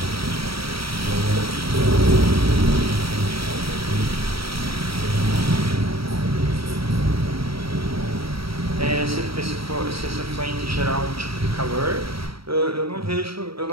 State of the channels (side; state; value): left; late; 0.75 ms